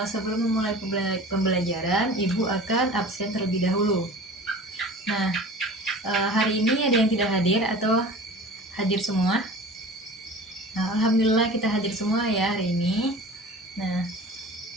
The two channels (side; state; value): both; normal; correlation 0.40